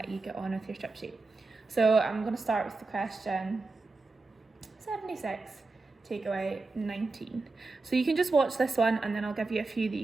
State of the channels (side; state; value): left; quieter; 3.6 dB